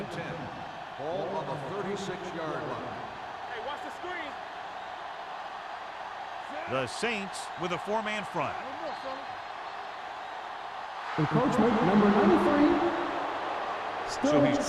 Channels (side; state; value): both; identical; correlation 1.00